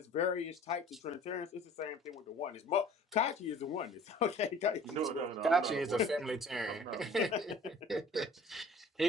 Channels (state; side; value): normal; both; correlation 0.49